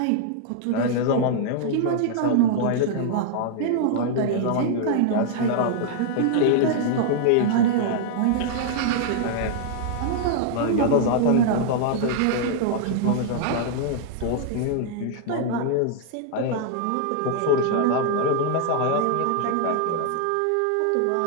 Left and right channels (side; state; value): both; different; correlation 0.00